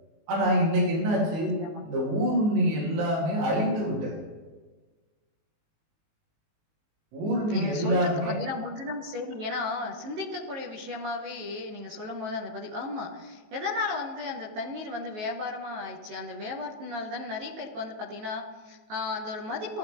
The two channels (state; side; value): late; left; 19 ms